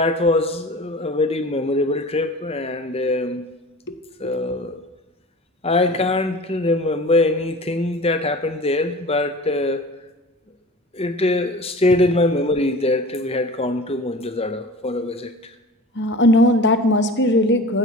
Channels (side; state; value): both; normal; correlation 0.39